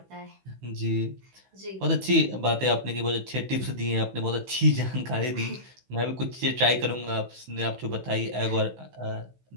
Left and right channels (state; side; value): late; left; 16 ms